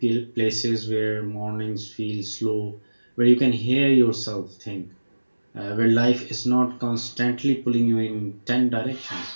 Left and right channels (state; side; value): inverted; both; correlation -1.00